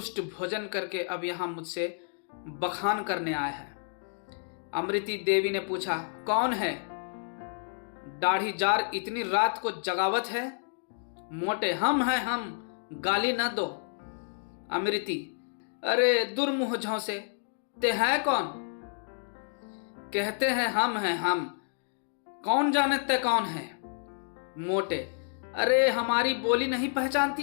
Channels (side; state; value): right; silent; digital silence